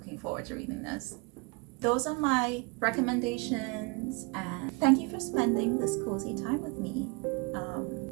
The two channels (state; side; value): quieter; left; 28.4 dB